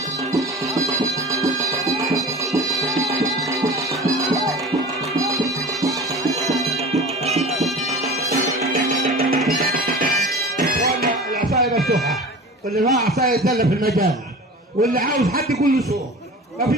العصايه مفتوحه، واللي معاه عصايه يتدلى في المجال، واللي عاوز حد يقول له سوق، ما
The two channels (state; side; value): normal; both; correlation 0.37